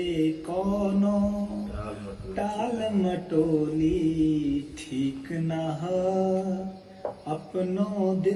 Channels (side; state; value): both; identical; correlation 1.00